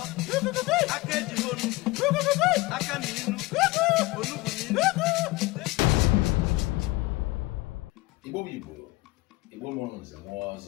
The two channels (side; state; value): right; quieter; 20.9 dB